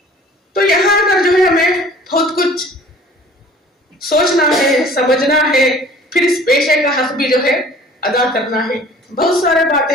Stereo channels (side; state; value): both; normal; correlation 0.49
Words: तो यहाँ आकर जो है हमें बहुत कुछ सोचना है, समझना है, फिर इस पेशे का हक भी जो है अदा करना है। बहुत सारे बातें